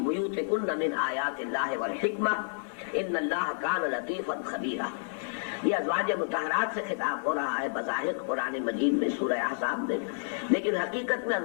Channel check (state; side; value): silent; right; 58 dB below the other